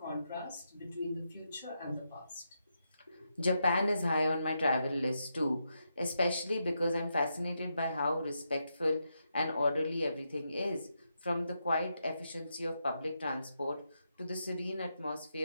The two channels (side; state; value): both; inverted; correlation -0.83